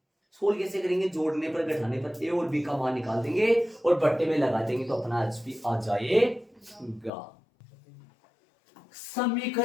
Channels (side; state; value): right; drops out; at 7.1 s